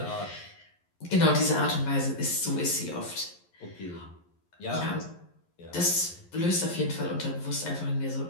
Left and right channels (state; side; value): late; right; 11 ms